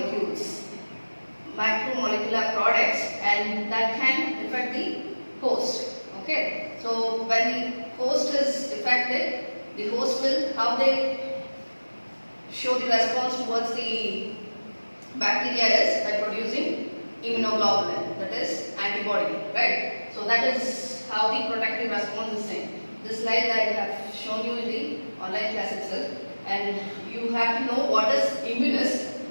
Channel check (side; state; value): both; inverted; correlation -1.00